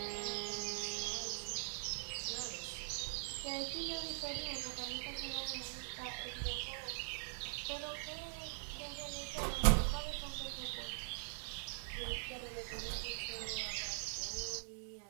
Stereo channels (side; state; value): left; silent; digital silence